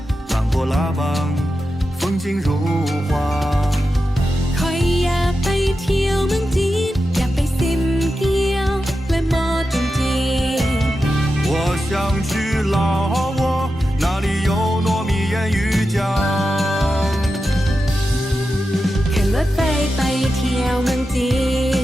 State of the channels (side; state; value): both; normal; correlation 0.90